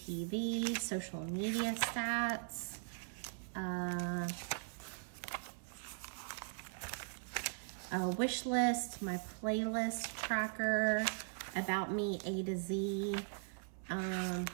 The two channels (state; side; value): silent; left; 51 dB below the other